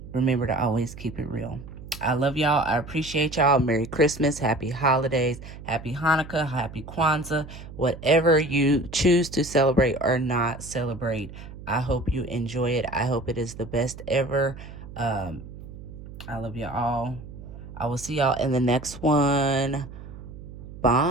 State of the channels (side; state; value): right; noise; hum, 14 dB below the sound